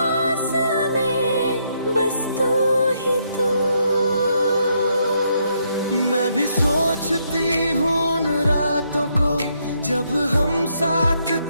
में बस तू ही तू। मैं भी सोचती हूँ उन रातों को जब हम साथ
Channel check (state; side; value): inverted; both; correlation -0.75